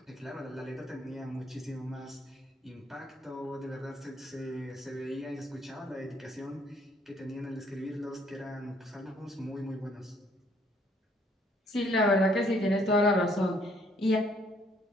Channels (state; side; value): normal; both; correlation 0.65